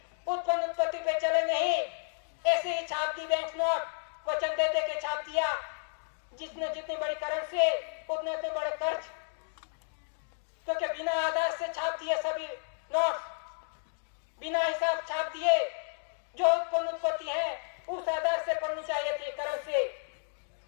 उत्पन्न उत्पत्ति पे चले नहीं। ऐसे ही छाप दी बैंक नोट, वचन दे दे के छाप दिया। जितने जितनी बड़ी करेंसी उतने उतने बड़े कर्ज, क्योंकि बिना आधार से छाप दिए सभी नोट, बिना हिसाब छाप दिए। जो उत्पन्न उत्पत्ति है उस आधार से पढ़नी चाहिए थी, कर्ज से।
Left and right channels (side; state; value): right; silent; digital silence